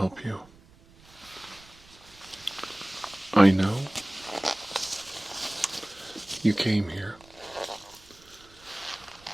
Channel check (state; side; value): noise; right; rumble, 25 dB below the sound